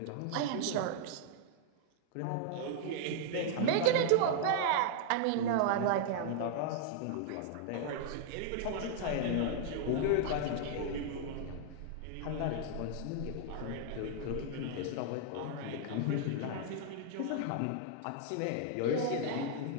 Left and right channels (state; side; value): different; both; correlation -0.01